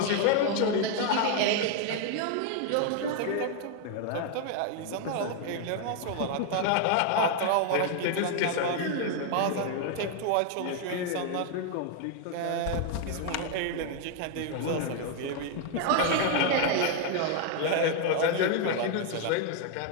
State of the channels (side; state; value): both; different; correlation 0.00